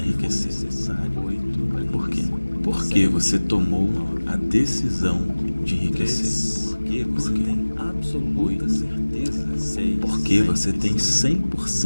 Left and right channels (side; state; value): both; inverted; correlation -1.00